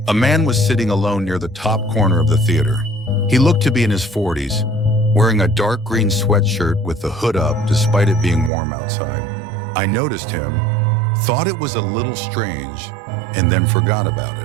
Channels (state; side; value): drops out; left; at 8.5 s